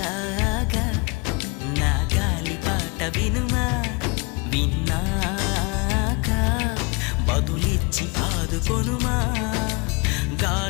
నా గాలి పాట వినుమా, విన్నాక బదులిచ్చి ఆదుకొనుమా.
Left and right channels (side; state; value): right; quieter; 28.9 dB